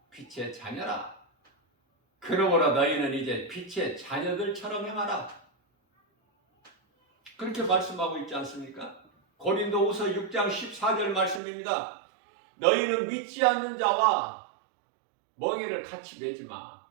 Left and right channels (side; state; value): left; drops out; at 11.4 s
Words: 빛의 자녀라. 그러므로 너희는 이제 빛의 자녀들처럼 행하라. 그렇게 말씀하고 있지 않습니까? 고린도후서 6장 14절 말씀입니다. 너희는 믿지 않는 자와 멍에를 같이 매지 마.